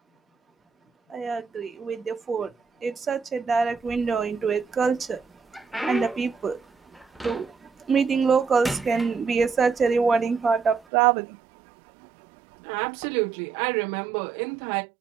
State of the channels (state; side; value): drops out; left; at 10.8 s